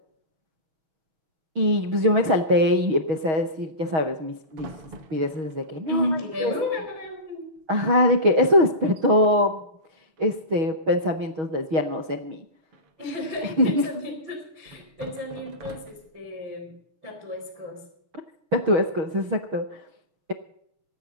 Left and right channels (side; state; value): left; late; 6.3 ms